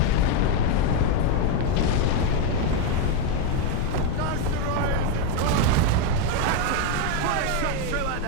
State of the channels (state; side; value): different; both; correlation 0.02